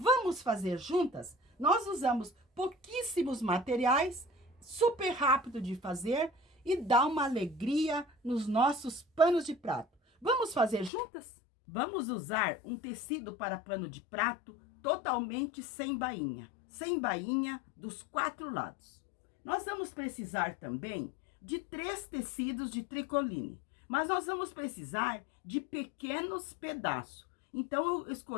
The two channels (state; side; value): drops out; right; at 10.9 s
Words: fazer juntas? Nós usamos pouquíssimos materiais, super rápido de fazer e dá uma alegria nos nossos panos de prato. Vamos fazer juntas? Vamos usar um tecido para pano de prato totalmente sem bainha dos 4 lados. Nós vamos precisar também de 3 tecidos de tricoline, mas nós vamos precisar de pequenos pedaços. Então, eu